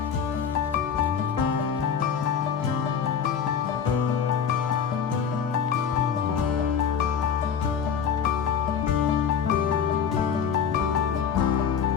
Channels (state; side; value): quieter; right; 7.3 dB